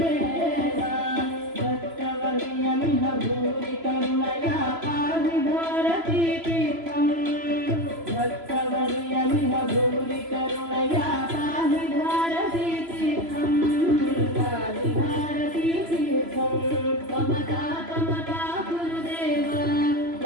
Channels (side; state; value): left; late; 3.0 ms